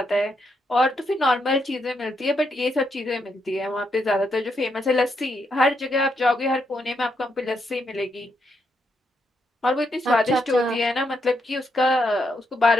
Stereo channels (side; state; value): both; normal; correlation 0.79